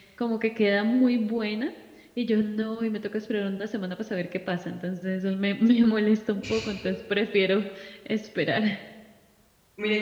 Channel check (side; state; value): both; identical; correlation 1.00